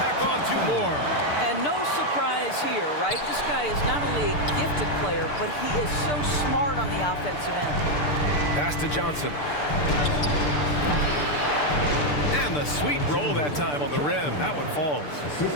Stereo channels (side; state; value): right; late; 6.8 ms